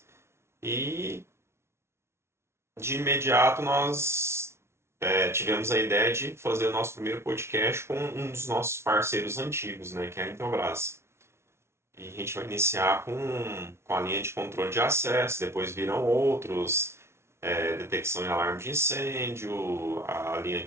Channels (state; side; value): late; left; 0.13 ms